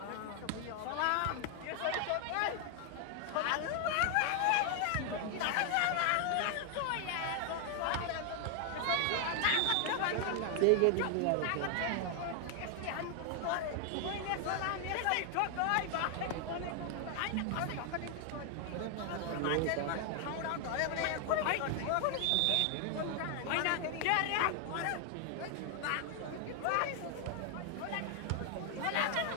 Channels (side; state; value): both; different; correlation 0.00